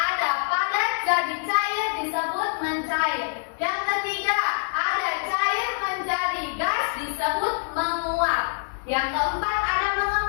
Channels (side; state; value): right; silent; digital silence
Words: padat jadi cair disebut mencair. Yang ketiga ada cair menjadi gas disebut menguap. Yang keempat ada